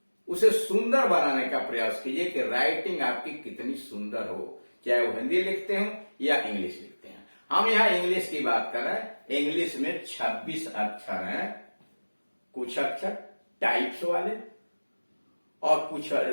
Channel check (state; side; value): inverted; both; correlation -1.00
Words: उसे सुंदर बनाने का प्रयास कीजिए कि राइटिंग आपकी कितनी सुंदर हो, चाहे वो हिंदी लिखते हो या इंग्लिश लिखते हैं। हम यहां इंग्लिश की बात कर रहे हैं। इंग्लिश में 26 अक्षर हैं, कुछ अक्षर टाइप्स वाले और कुछ